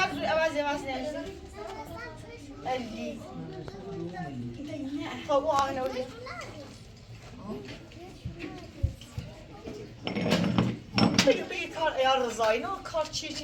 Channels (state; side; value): identical; both; correlation 1.00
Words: علی خب او آهنه بیا بگی کار ایار رضایی نه کار چی